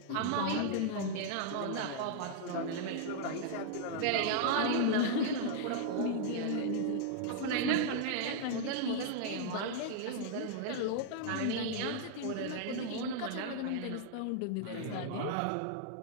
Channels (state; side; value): different; both; correlation -0.01